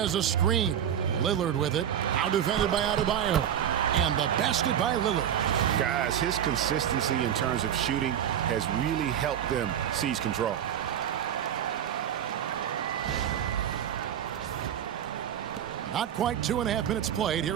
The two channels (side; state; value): left; quieter; 9.7 dB